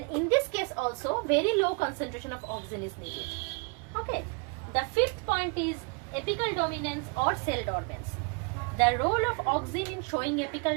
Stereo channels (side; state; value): left; quieter; 33.0 dB